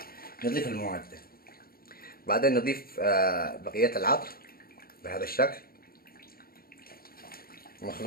نضيف المواد، بعدين نضيف بقيه العطر بهذا الشكل،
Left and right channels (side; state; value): right; late; 0.43 ms